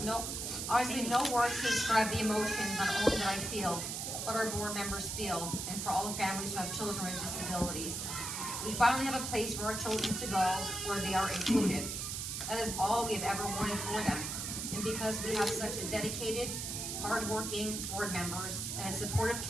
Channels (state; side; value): noise; right; hiss, 4 dB below the sound